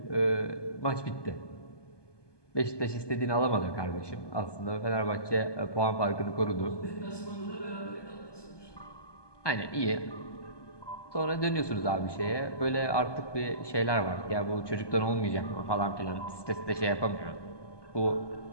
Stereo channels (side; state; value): right; late; 1.2 ms